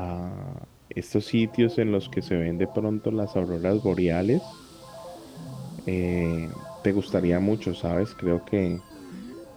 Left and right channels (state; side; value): identical; both; correlation 1.00